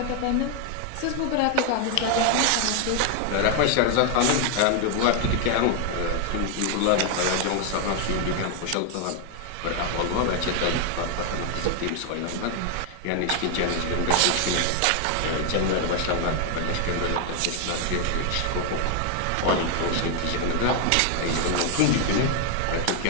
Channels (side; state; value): both; different; correlation 0.00